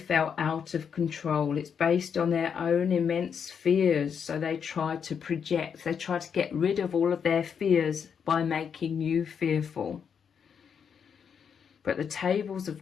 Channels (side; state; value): right; quieter; 7.1 dB